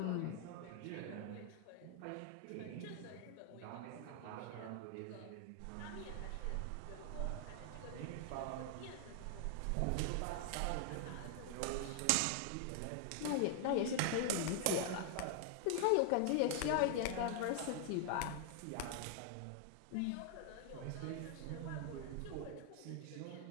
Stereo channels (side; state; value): both; different; correlation 0.00